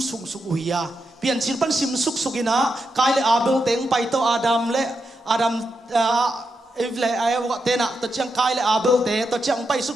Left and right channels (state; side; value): normal; both; correlation 0.85